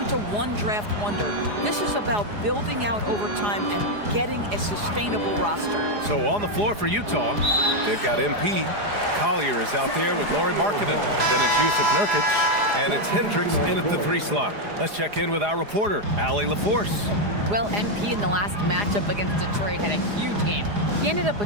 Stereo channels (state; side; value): late; left; 4.9 ms